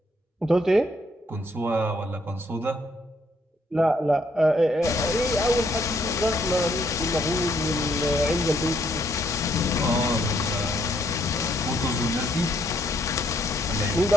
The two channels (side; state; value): both; normal; correlation 0.71